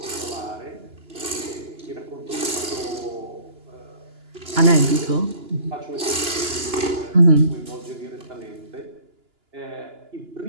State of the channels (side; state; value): left; late; 2.9 ms